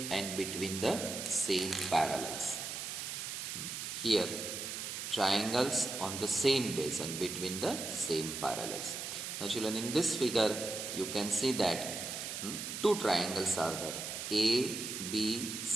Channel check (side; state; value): right; noise; hiss, 5 dB below the sound